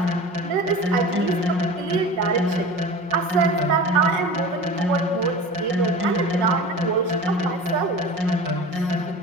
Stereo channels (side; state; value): left; late; 5.5 ms